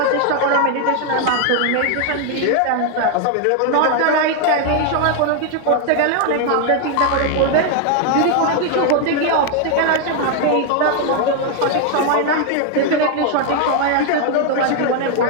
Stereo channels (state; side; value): different; both; correlation 0.00